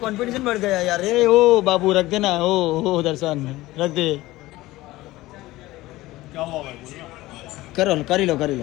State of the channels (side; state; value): right; quieter; 18.1 dB